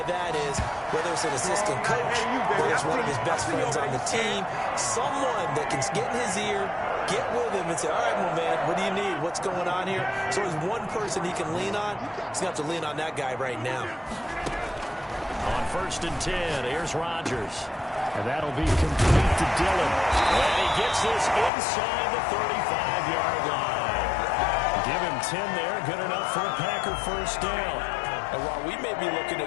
that is, whether it's an assistant coach, whether it's one of his best friends on the team, someone that can get in his ear, get with him and say, all right, well, man, what do you need? What's going on here? So there's one person he can lean on. He's going to have to lean on that guy right now. On 1st and 10, here's Rodgers. And that'll be complete to Dillon. And he gets this inside the 35-yard line. Give him 10 there. Good enough for a Packer first down. And while we may be looking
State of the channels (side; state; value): right; drops out; at 21.5 s